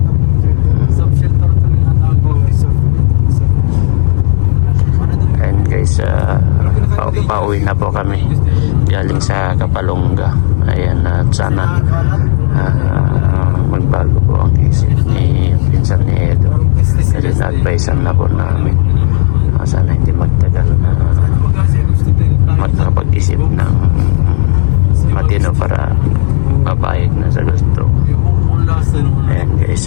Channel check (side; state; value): right; silent; 69 dB below the other